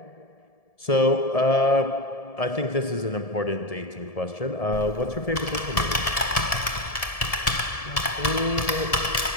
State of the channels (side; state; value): right; late; 1.7 ms